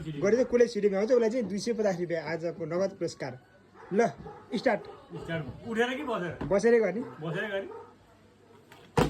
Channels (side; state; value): both; identical; correlation 1.00